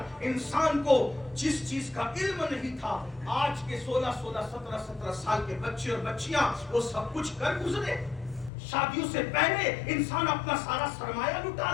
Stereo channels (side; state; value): right; drops out; at 8.5 s